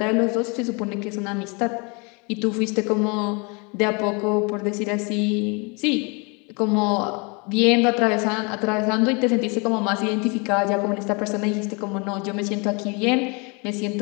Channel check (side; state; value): right; quieter; 31.3 dB